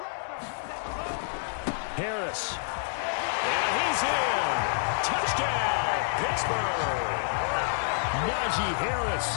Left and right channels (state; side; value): silent; right; digital silence